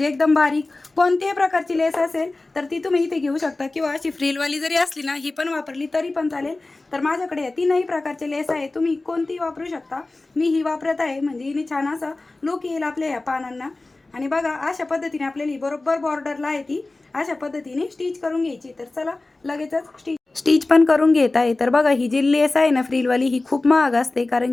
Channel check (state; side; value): quieter; right; 3.1 dB